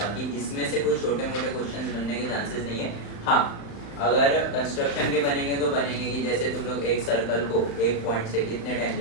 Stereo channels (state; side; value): late; right; 35 ms